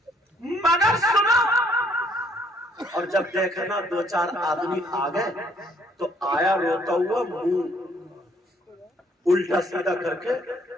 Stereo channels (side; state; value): both; normal; correlation 0.65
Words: مگر سنو، اور جب دیکھا نا دو چار آدمی آ گئے، تو آیا روتا ہوا منہ الٹا سیدھا کر کے